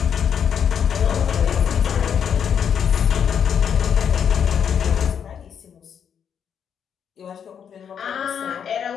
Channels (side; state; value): right; quieter; 7.9 dB